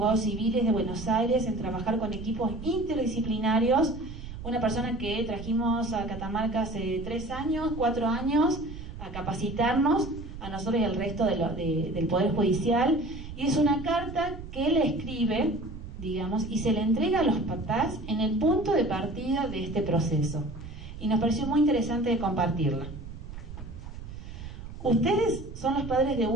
civiles de Buenos Aires en trabajar con equipos interdisciplinarios. Una persona que trajimos a Catamarca hace 4 años, a capacitarnos, a nosotros y al resto del Poder Judicial, y es una carta que él escribe, digamos, y se le entrega a los papás en el punto de partida de este proceso. Y nos pareció muy interesante de compartirla. Ustedes son los padres de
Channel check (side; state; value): right; noise; rumble, 11 dB below the sound